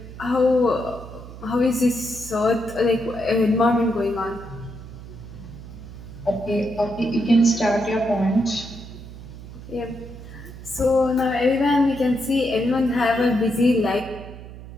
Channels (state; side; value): noise; right; hum, 14 dB below the sound